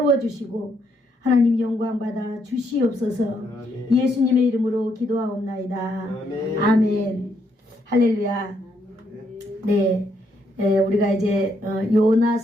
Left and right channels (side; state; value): both; normal; correlation 0.75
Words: 하나님 영광 받아 주시옵소서. 예수님의 이름으로 기도하옵나이다. 아멘. 할렐루야. 네, 우리가 이제